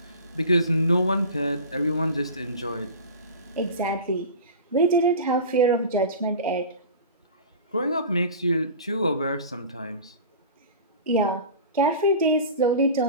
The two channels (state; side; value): inverted; both; correlation -0.35